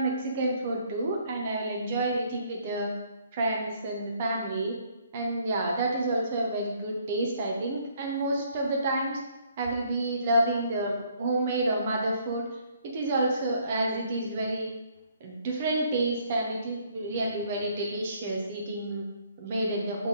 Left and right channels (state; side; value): inverted; both; correlation -0.65